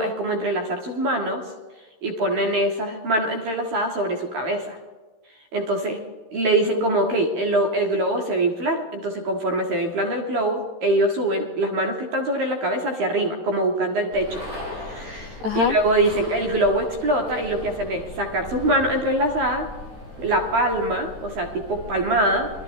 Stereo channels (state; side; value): late; left; 13 ms